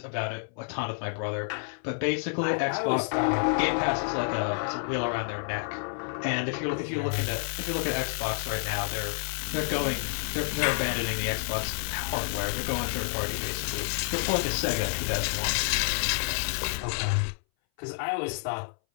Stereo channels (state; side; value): silent; right; 59 dB below the other